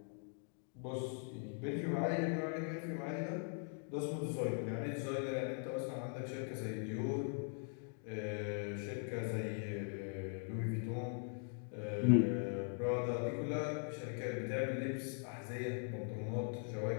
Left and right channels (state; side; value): silent; right; 50 dB below the other